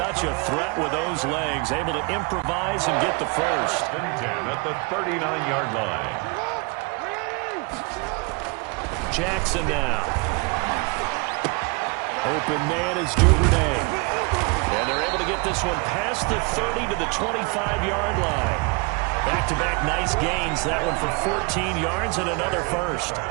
a threat with those legs, able to improvise and get the first. And 10 at the 39-yard line. Jackson now. Open man is Duvernay. And they're able to get this one past the 30 to the 25-yard line. Back-to-back nice gains. That one for 14 yards and another first.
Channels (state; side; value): quieter; left; 29.6 dB